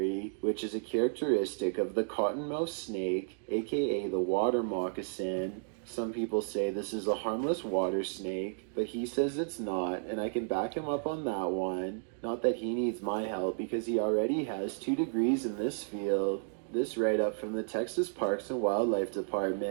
which is a characteristic of the cottonmouth snake, aka the water moccasin. Some people say this is a harmless water snake, but he says it's not, and I can back him up on that one. Not that he needs my help, because he already has 2 degrees in this field. This write-up from the Texas Parks and Wildlife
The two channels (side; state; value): left; silent; digital silence